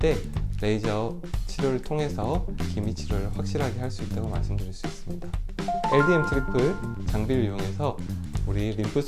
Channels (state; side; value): identical; both; correlation 1.00